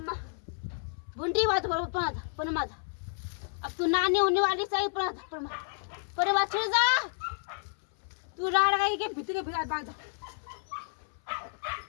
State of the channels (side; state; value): right; silent; 57 dB below the other